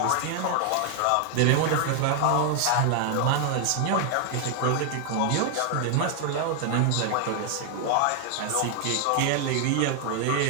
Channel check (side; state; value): both; different; correlation 0.00